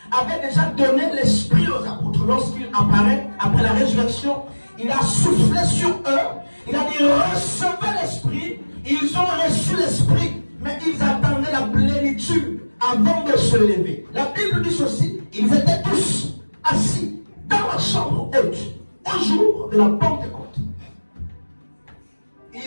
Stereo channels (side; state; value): both; inverted; correlation -1.00